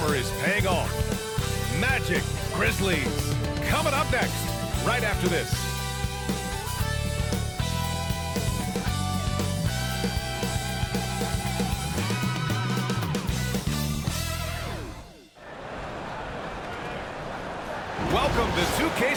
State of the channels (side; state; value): both; identical; correlation 1.00